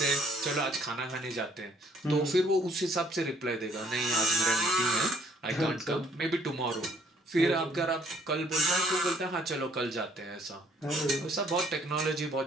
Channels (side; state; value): both; normal; correlation 0.63